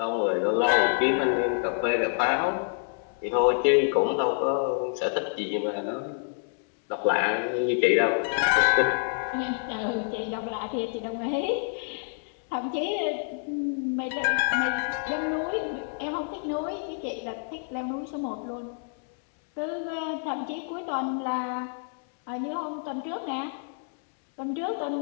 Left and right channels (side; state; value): right; silent; digital silence